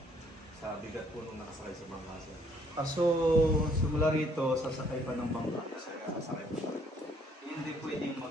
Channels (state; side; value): normal; both; correlation 0.65